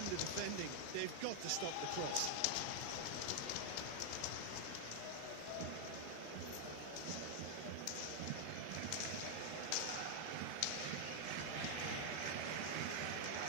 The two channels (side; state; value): both; different; correlation 0.00